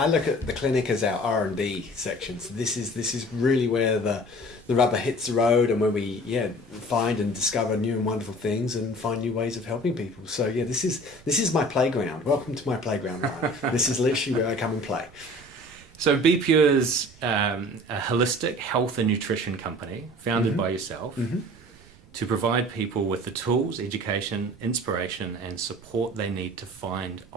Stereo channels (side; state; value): right; noise; rumble, 24 dB below the sound